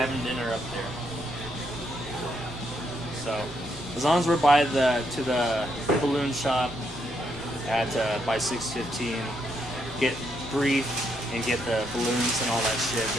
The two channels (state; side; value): normal; both; correlation 0.77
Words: dinner up there. So, as long as we're by to the balloon shop at by 6:15, get brief and get the balloons and all that shit,